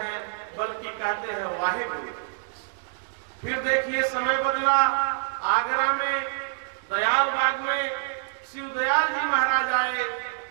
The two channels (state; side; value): silent; left; digital silence